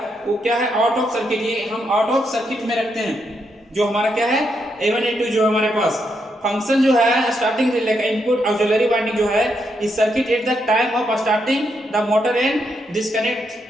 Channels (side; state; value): both; normal; correlation 0.80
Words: वो क्या है, आउट ऑफ सर्किट, ये हम आउट ऑफ सर्किट में रखते हैं। जो हमारा क्या है A1 A2 जो हमारे पास फंक्शन जो है स्टार्टिंग रिले का इनपुट ऑक्सिलरी वाइंडिंग जो है इस circuit at the time of starting the motor and disconnect